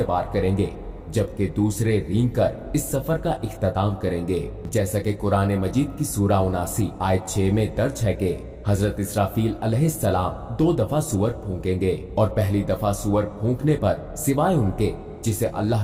पार करेंगे जबकि दूसरे रेंग कर इस सफर का इख्तिताम करेंगे। जैसा कि कुरान मजीद की सूरा 79 आयत 6 में दर्ज है कि हजरत इसराफील अलैहिस्सलाम 2 दफा सूअर फूंकेंगे और पहली दफा सूअर फूंकने पर सिवाय उनके जिसे अल्लाह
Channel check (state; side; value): identical; both; correlation 1.00